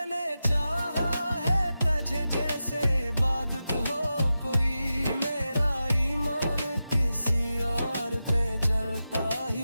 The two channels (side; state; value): both; inverted; correlation -0.91